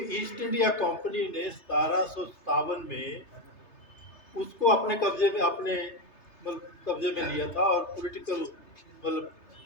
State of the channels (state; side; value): late; right; 3.3 ms